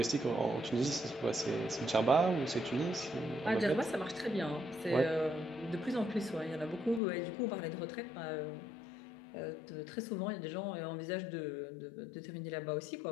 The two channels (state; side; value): drops out; right; at 7.0 s